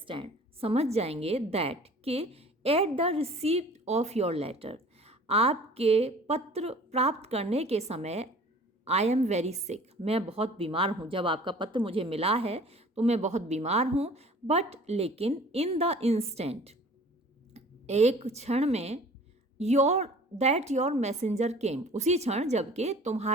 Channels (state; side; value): normal; both; correlation 0.47